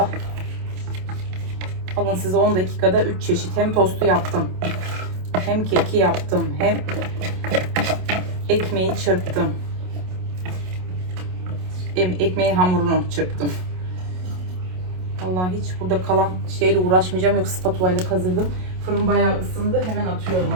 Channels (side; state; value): left; late; 27 ms